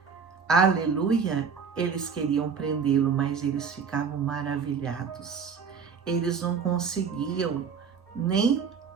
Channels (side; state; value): left; quieter; 6.2 dB